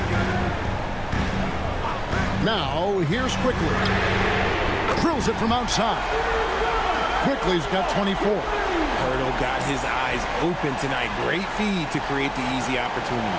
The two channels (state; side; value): identical; both; correlation 1.00